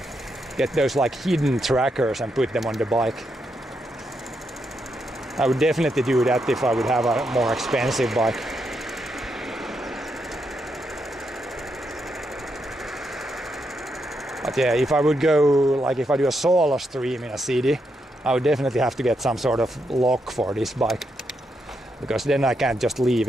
Get those like hidden trackers and put them on the bike. I would definitely do that if I would have a more expensive bike. But yeah, if I would go, like if I do a solo stream in a city, I would definitely have to get some sort of lock for this bike, because then I can't just leave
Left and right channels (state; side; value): normal; both; correlation 0.81